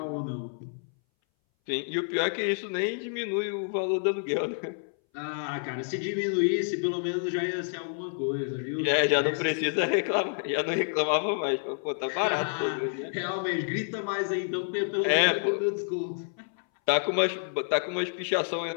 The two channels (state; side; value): silent; right; 59 dB below the other